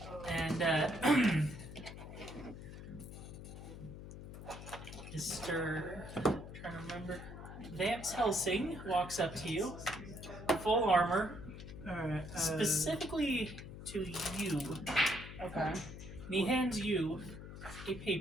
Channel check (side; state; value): left; noise; hum, 11 dB below the sound